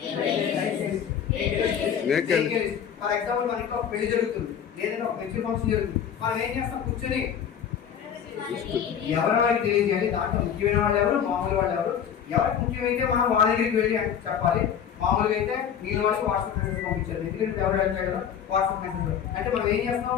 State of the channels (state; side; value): quieter; right; 8.5 dB